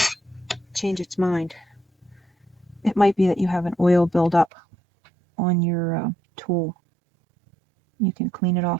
change its mind. It might be that you have an oil buildup on your tool. You can clean it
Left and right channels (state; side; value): drops out; left; at 4.5 s